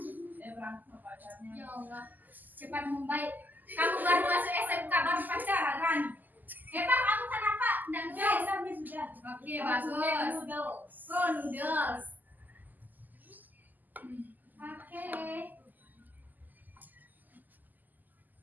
Dia berantem sama pacarnya. Ya Allah, cepat membaik. Kamu baru masuk SMK, baru pacaran, Rani. Pak, kamu kenapa? Nggak Sudah, Miss, sudah. Oke, bagus. Noodles. Oh, noodles. Oke.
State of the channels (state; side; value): late; left; 0.085 ms